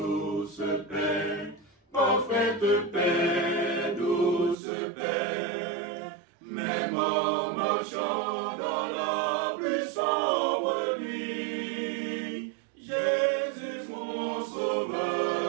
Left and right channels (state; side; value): drops out; left; at 4.5 s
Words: paix, parfaite paix, douce paix, même en marchant dans la plus sombre nuit, Jésus mon